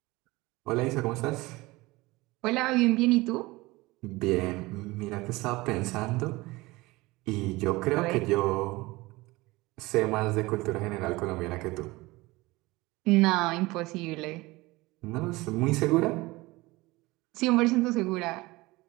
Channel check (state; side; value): quieter; left; 21.2 dB